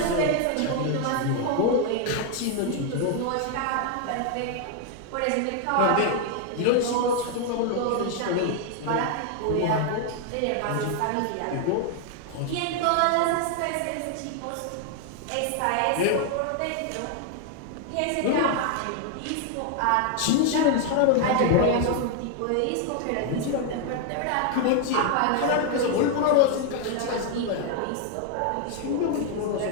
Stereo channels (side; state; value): both; different; correlation 0.00